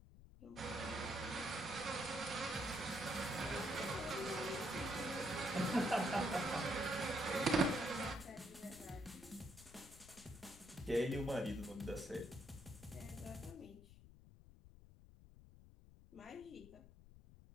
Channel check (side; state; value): left; noise; rumble, 19 dB below the sound